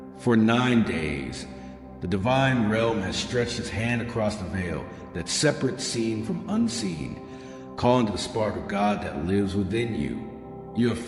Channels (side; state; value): both; identical; correlation 1.00